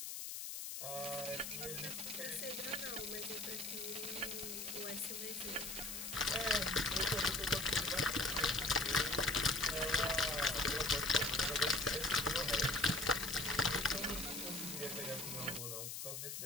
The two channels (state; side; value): noise; left; hiss, 6 dB below the sound